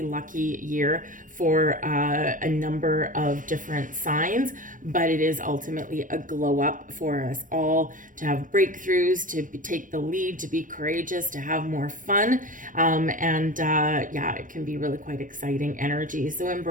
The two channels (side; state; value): left; late; 0.38 ms